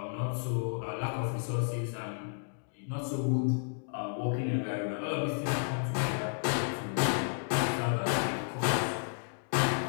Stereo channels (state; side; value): silent; right; digital silence